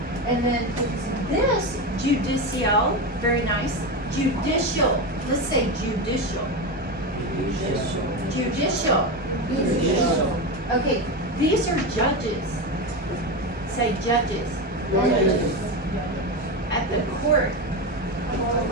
And then this judicial, very nice. Judicial. Let's say judicial. Judicial. Okay, these are judges. Say judges. At the court.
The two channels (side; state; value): both; normal; correlation 0.17